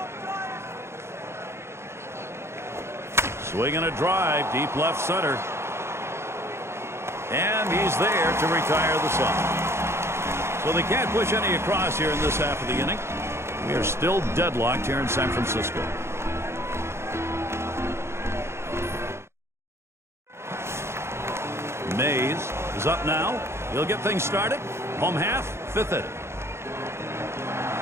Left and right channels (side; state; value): left; late; 0.13 ms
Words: Swinging a drive, deep left center. And he's there to retire the side. So they can't push any across here in this half of the inning. We are still deadlocked here in San Francisco. Mays is up now. He'll get things started. Home half, 5th inning.